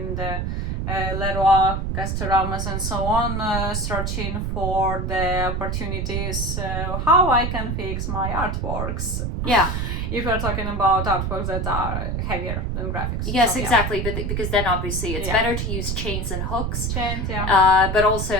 the Leroy, Castorama's and so on, searching for the opportunities how I can fix my artworks. Yeah. If you're talking about artworks that are heavier than graphics. Yes, So, yeah. exactly. But because then obviously it's Yeah. better to use chains and hooks. Chains, yeah. But also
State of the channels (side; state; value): right; noise; rumble, 1 dB below the sound